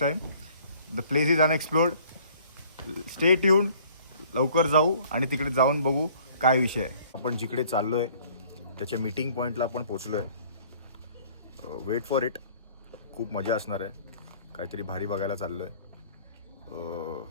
time. The place is unexplored. Stay tune. लवकर जाऊ आणि तिकडे जाऊन बघू काय विषय आहे. आपण जिकडे चाललोय त्याच्या मीटिंग पॉईंटला आपण पोचलोय. Weight for it. खूप मजा असणार आहे. काहीतरी भारी बघायला चाललोय.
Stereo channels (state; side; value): inverted; both; correlation -0.55